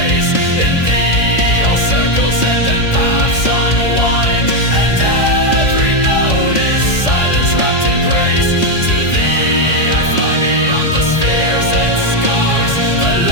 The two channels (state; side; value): late; right; 3.2 ms